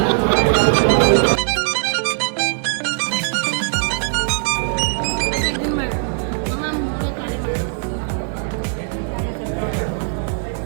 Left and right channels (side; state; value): left; silent; 66 dB below the other